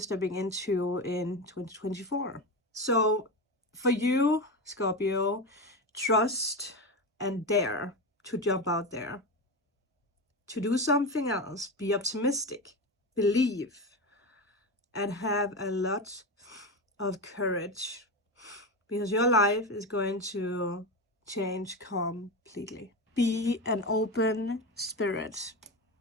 into in 2024. So for you, Scorpio, trust and dare to jump out there, to do something else, be optimistic, believe, and have a lot of courage, because your life is going to change completely. Be an open spirit.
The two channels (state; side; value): normal; both; correlation 0.19